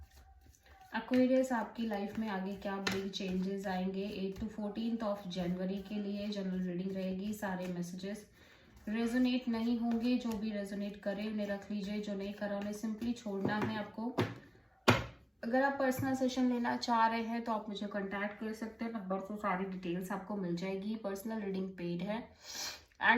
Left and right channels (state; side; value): identical; both; correlation 1.00